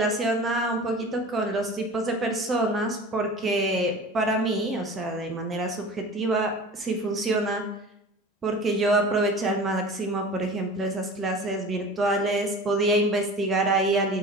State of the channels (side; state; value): both; normal; correlation 0.38